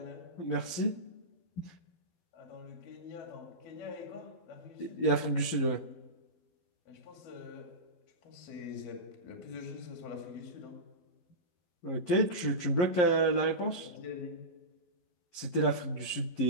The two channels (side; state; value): right; late; 11 ms